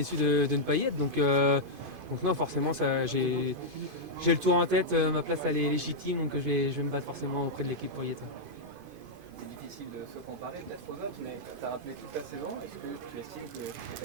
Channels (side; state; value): left; late; 2.5 ms